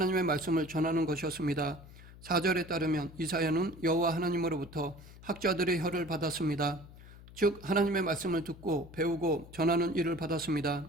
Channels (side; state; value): left; noise; hum, 19 dB below the sound